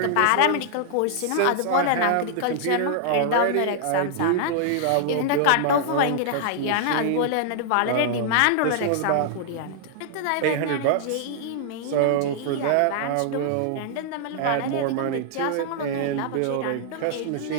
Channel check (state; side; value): different; both; correlation -0.01